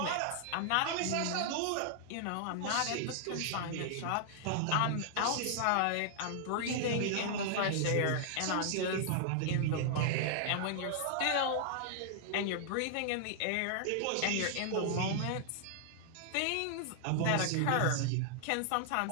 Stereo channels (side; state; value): both; different; correlation -0.01